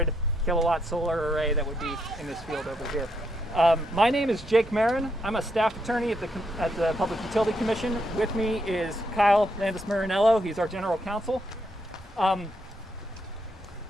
kilowatt solar array that would be in this field over here. My name is Jake Marin. I'm a staff attorney at the Public Utility Commission. With me is Kyle Landis-Marinello. He's our general counsel. I'm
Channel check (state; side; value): normal; both; correlation 0.78